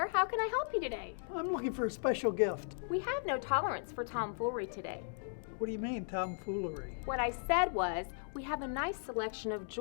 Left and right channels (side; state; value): right; silent; digital silence